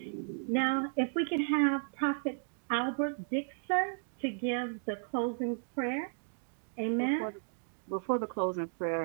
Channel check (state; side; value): silent; left; digital silence